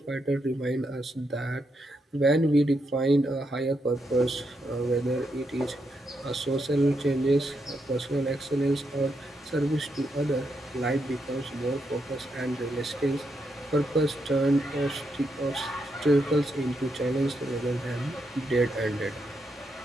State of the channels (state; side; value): normal; both; correlation 0.81